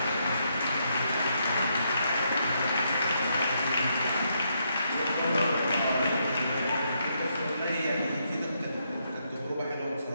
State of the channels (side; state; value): both; inverted; correlation -0.78